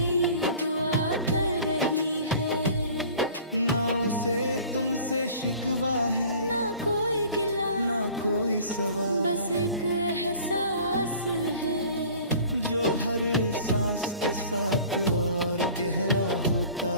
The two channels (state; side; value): inverted; both; correlation -0.46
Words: दुआ कर रही है। ना उसे तुमसे शिकवा है, ना कोई गिला, ना कोई सवाल, बस एक एहसास है जो हर सांस के साथ और गहरा होता